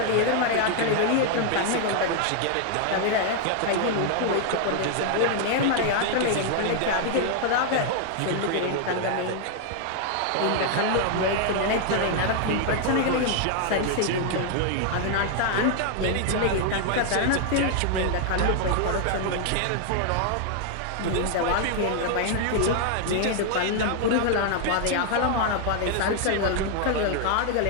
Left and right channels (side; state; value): both; different; correlation 0.00